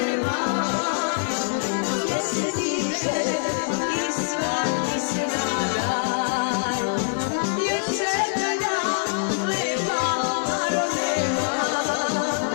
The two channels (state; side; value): silent; right; 56 dB below the other